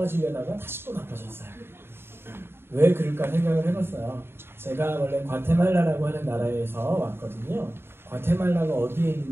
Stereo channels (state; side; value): late; left; 0.11 ms